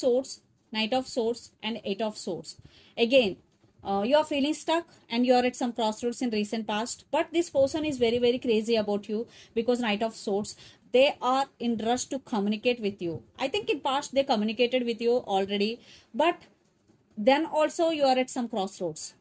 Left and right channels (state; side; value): identical; both; correlation 1.00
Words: knight of swords, and 8 of swords. Again, you are feeling stuck and you are at some crossroads in recent past, but this person is very very crazy about you because knight of swords, they are in rush to communicate with you. I think in past they communicated with you already, but then also you are at some crossroads.